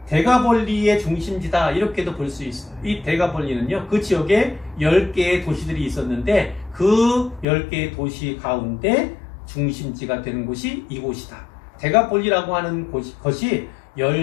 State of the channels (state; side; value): drops out; right; at 7.5 s